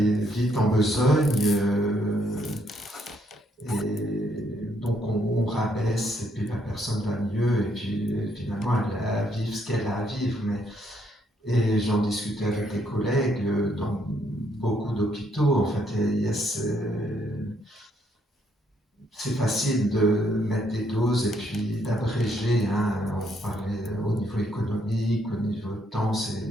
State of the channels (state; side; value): normal; both; correlation 0.72